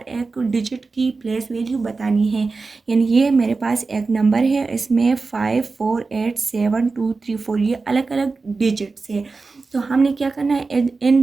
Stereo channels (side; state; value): left; quieter; 4.0 dB